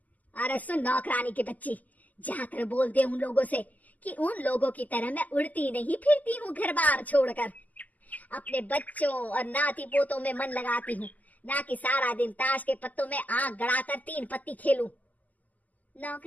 अरे सुन नौकरानी के बच्ची, जाकर बोल दे उन लोगों से कि उन लोगों की तरह मैं उड़ती नहीं फिरती हूँ घर बार छोड़कर। अपने बच्चों और नाती पोतों में मन लगाती हूँ, ना कि सारा दिन ताश के पत्तों में आंख गड़ाकर 3 पत्ती खेलूं।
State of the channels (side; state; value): right; late; 0.079 ms